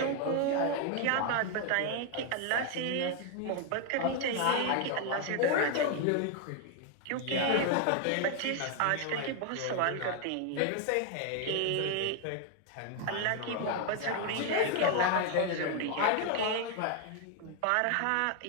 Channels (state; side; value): different; both; correlation 0.00